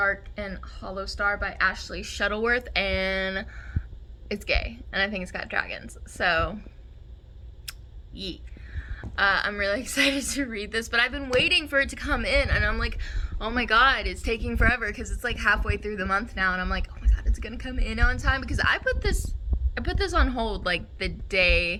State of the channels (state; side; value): identical; both; correlation 1.00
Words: and Hollow Star by Ashley Shuttleworth, and it's gay, and I think it's got dragons. So, yeet. I'm really excited to read this, but I've been waiting for it to come in, and I'm like, oh my god, it's taking forever because it's like halfway through the month now, and I'm like, oh my god, it's gonna come in on time, because I put this on hold like the